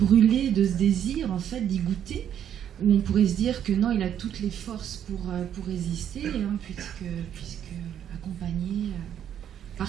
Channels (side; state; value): left; quieter; 9.7 dB